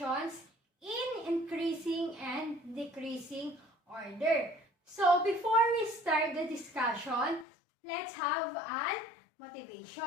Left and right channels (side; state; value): right; drops out; at 7.5 s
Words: in increasing and decreasing order. So, before we start the discussion, let's have an